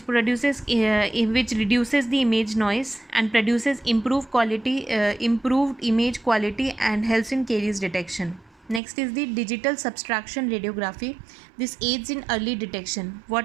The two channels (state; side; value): drops out; left; at 8.8 s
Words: the image noise and produces improved image quality and helps in caries detection. Next is the digital subtraction radiography. This aids in early detection.